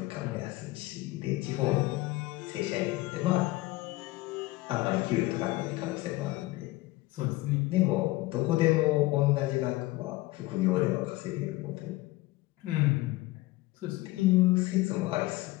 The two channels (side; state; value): right; quieter; 19.4 dB